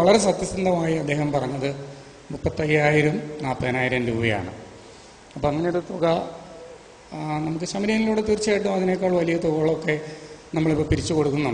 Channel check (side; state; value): both; identical; correlation 1.00